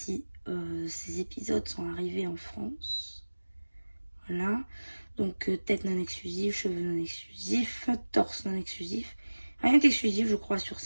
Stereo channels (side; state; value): both; inverted; correlation -1.00